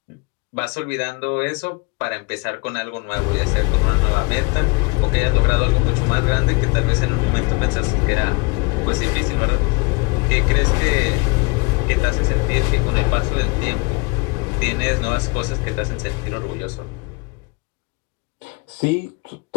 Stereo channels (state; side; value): quieter; right; 29.3 dB